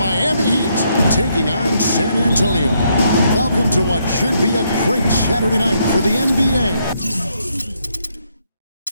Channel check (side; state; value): both; inverted; correlation -0.75